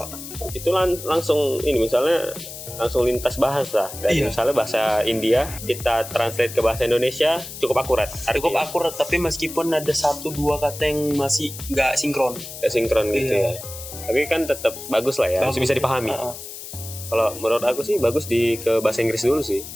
Itu langsung ini misalnya langsung lintas bahasa dari Iya. misalnya bahasa India kita translate ke bahasa Indonesia cukup akurat. Cukup Artinya akurat, tapi meskipun ada 1-2 kata yang masih nggak sinkron. nggak sinkron gitu Iya. ya. Tapi kan tetap bagus lah ya, masih bisa dipahami. Kalau menurut aku sih bagus ke bahasa Inggris dulu sih.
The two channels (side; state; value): left; noise; hiss, 11 dB below the sound